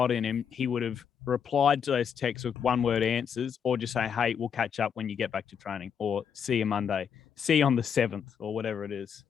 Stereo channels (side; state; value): right; quieter; 7.5 dB